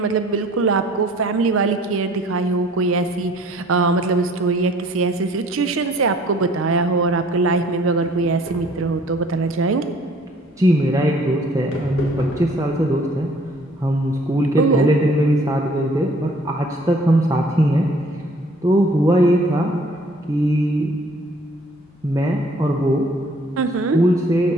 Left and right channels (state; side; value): normal; both; correlation 0.56